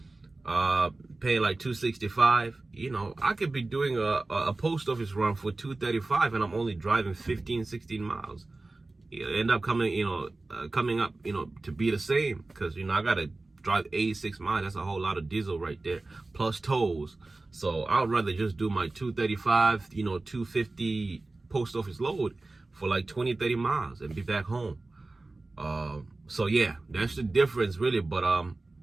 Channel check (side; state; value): left; quieter; 3.2 dB